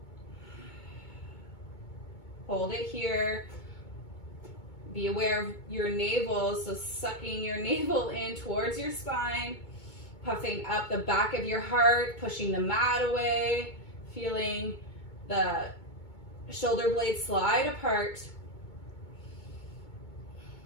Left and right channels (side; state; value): right; late; 2.2 ms